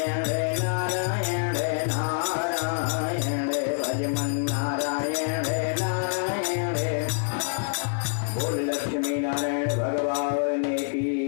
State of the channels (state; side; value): silent; right; 61 dB below the other